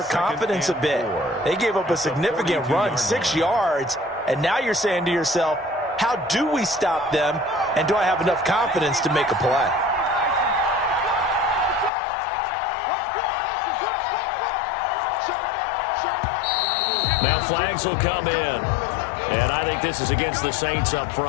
confidence a bit. They gave up a significant run, 6 yards, and now you're saying to yourself, how do we stop them, and do I have enough confidence to make a play? Now flags will come in. And I think this is against the Saints up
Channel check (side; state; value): right; drops out; at 11.9 s